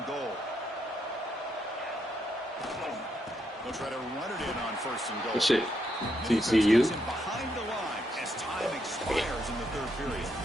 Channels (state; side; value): normal; both; correlation 0.78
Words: goal. They'll try to run it in on first and goal. Good shit. TCU. Behind the line as time expires in the third period.